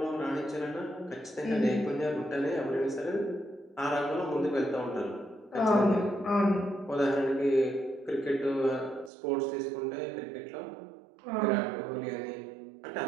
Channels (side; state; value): left; drops out; at 9.1 s